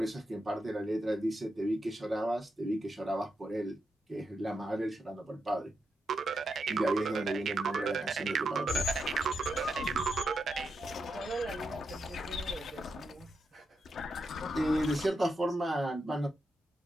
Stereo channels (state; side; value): normal; both; correlation 0.85